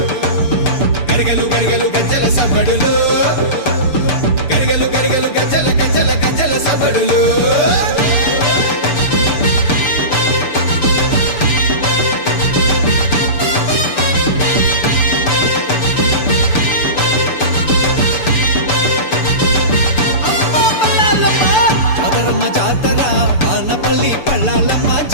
గరగలు గరగలు గజ్జల సవ్వడులు గరగలు గరగలు గజ్జల గజ్జల గజ్జల సవ్వడులు వానపల్లి పల్లాలమ్మ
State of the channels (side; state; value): right; late; 6.8 ms